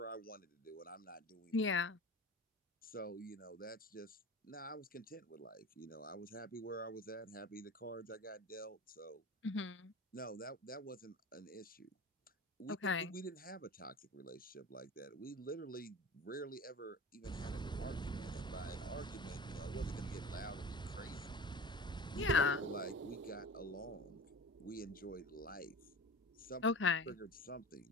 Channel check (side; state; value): both; normal; correlation 0.35